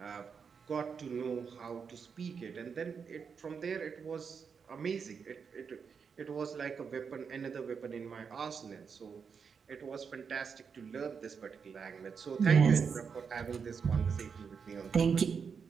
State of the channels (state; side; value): quieter; left; 6.1 dB